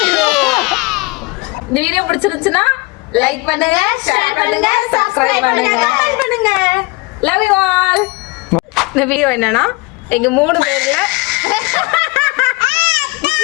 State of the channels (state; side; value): quieter; right; 24.9 dB